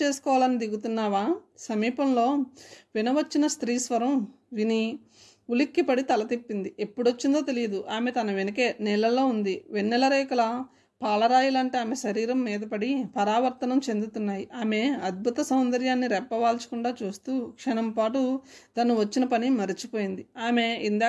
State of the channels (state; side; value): identical; both; correlation 1.00